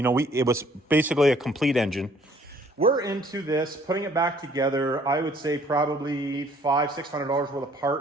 was basically a complete engine. We're into this, putting it back together, I would say probably $500-$600 worth of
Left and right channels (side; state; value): both; normal; correlation 0.59